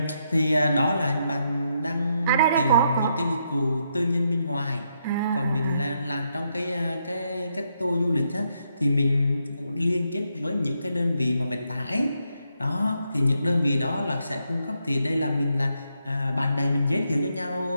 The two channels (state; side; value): inverted; both; correlation -0.78